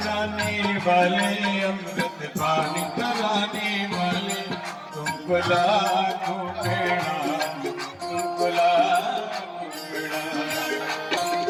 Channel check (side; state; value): both; identical; correlation 1.00